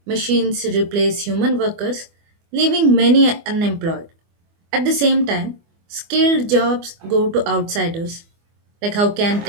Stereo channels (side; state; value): left; late; 24 ms